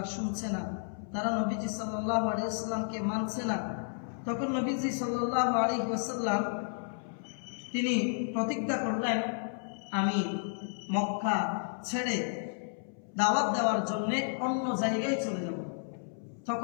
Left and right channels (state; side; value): silent; right; 56 dB below the other